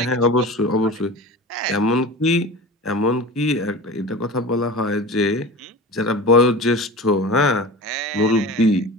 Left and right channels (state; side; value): normal; both; correlation 0.33